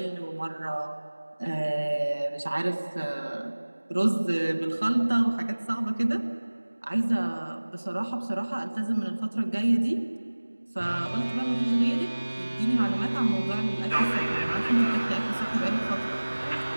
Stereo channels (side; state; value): both; inverted; correlation -1.00